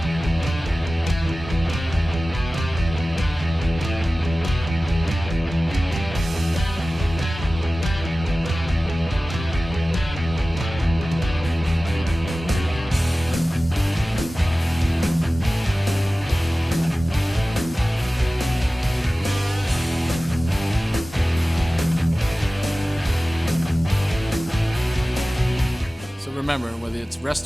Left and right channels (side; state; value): both; normal; correlation 0.96